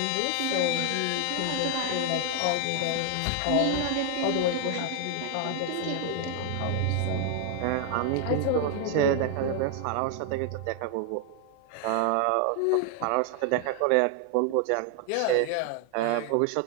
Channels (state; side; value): different; both; correlation 0.00